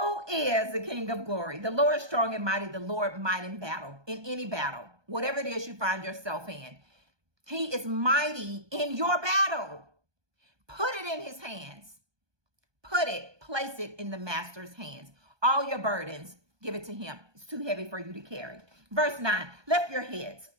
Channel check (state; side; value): late; left; 1.2 ms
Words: is the King of glory? The Lord strong and mighty, the Lord mighty in battle, in any battle, whatever it is you find yourself in. He is mighty in your battle. Put it in his hands. Place it in the master's hands. All your burdens, give it to him. It's too heavy for you to carry. Verse 9, lift your heads,